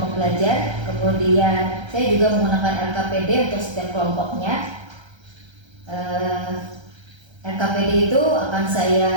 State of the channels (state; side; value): late; left; 1.3 ms